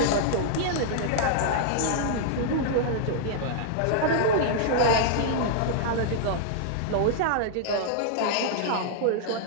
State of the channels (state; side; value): different; both; correlation -0.01